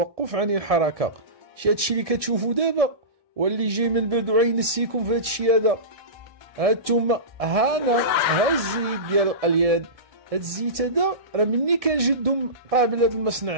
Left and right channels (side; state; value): left; late; 1.6 ms